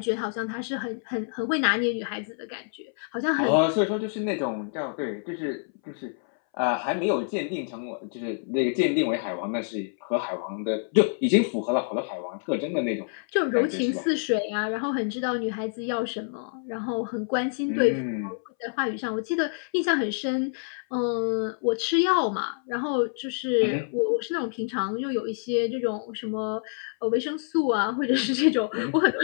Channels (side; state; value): right; silent; 60 dB below the other